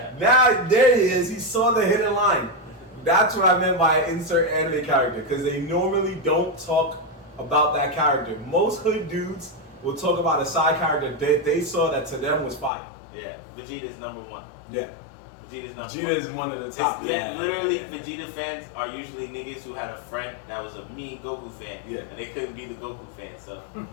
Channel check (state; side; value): drops out; right; at 12.7 s